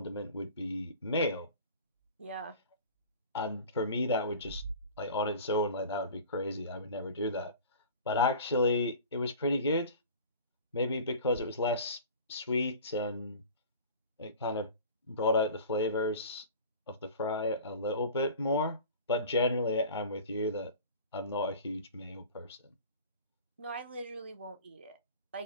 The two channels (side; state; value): both; inverted; correlation -0.40